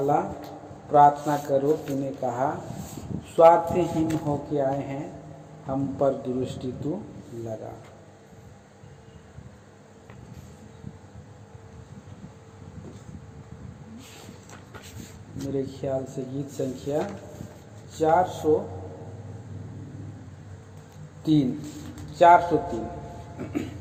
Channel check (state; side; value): identical; both; correlation 1.00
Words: प्रार्थना करो, तूने कहा, स्वार्थहीन होके आए हैं, हम पर दृष्टि तू लगा। मेरे ख्याल से गीत संख्या 403